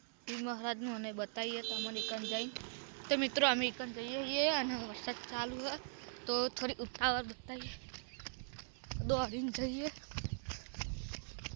પીર મહારાજનું અને બતાવીએ તમને એકન જઈને. તો મિત્રો અમે એકન જઈએ છીએ અને વરસાદ ચાલુ છે તો થોડી ઉતાવળ બતાવીએ દોડીને જઈએ.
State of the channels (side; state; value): left; silent; 50 dB below the other